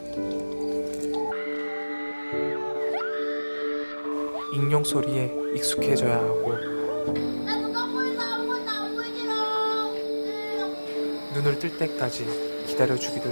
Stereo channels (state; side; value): inverted; both; correlation -1.00